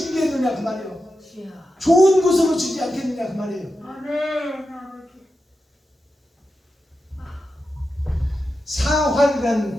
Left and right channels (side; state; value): both; normal; correlation 0.90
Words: 그 말이에요. 좋은 곳으로 주지 않겠느냐 그 말이에요.